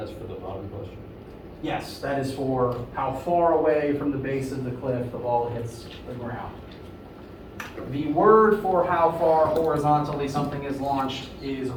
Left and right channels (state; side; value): identical; both; correlation 1.00